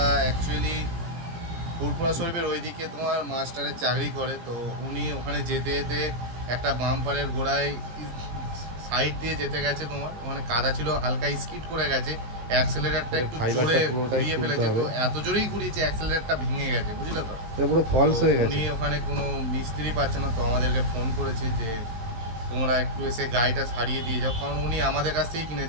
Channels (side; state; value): left; late; 17 ms